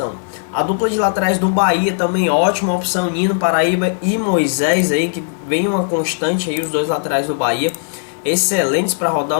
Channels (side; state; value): right; silent; 68 dB below the other